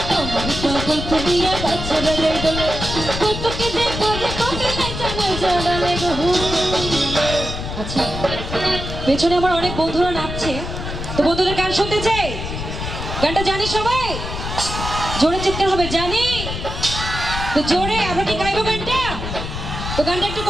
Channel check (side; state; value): left; noise; rumble, 6 dB below the sound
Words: আমার পাগল করিয়া ছেড়ে গাই বলে কতকে যে করে কবে নাই জানাই জানালে গো। আচ্ছা পেছনে আমার অনেক বন্ধুরা নাচছে, তো বন্ধুদের গান শুনতে চাই। গানটা জানি সবাই? জোরে চিৎকার হবে, জানি তো জোরে। আমরা কি গাইবো গানটা? তো গানটা একটু